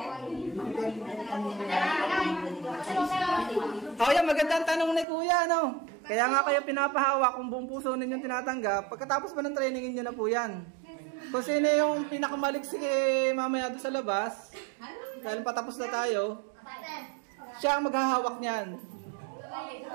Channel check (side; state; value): left; drops out; at 5.1 s